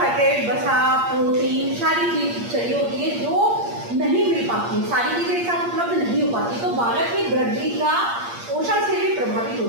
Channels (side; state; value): left; late; 8.6 ms